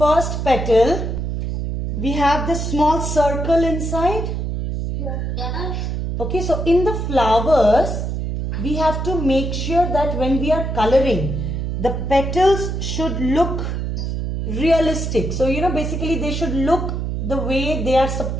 petal, we have this small circle inside. Okay, so in the flowers, we have to make sure that when we are coloring, the petals should look realistic. So, basically they should look the way they are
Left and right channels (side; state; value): right; noise; hum, 2 dB below the sound